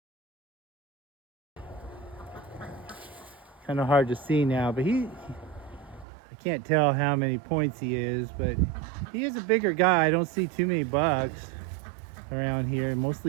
Kind of hard to see now, but I can't tell how many points he is, but he is a bigger guy. I don't see too many bucks around here,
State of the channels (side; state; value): left; drops out; at 6.1 s